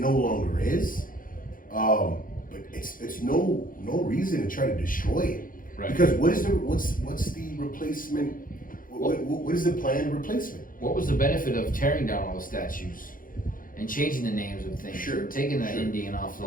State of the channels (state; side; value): late; right; 0.40 ms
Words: longer is. But it's no reason to try to destroy it. Right. Because what's the replacement? What is the planned replacement? What was the benefit of tearing down all the statues and changing the names of things? Sure. Taking the Indian off the